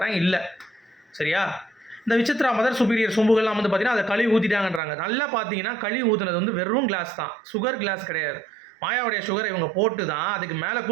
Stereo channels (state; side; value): drops out; left; at 4.8 s